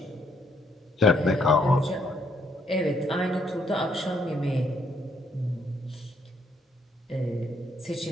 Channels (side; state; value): both; normal; correlation 0.71